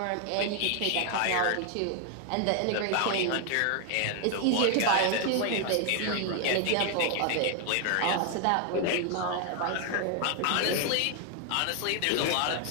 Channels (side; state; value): both; different; correlation 0.00